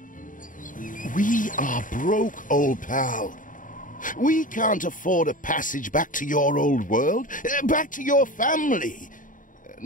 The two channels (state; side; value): late; right; 0.38 ms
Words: We are broke, old pal. We can't afford a passage back to your old world, back to your family.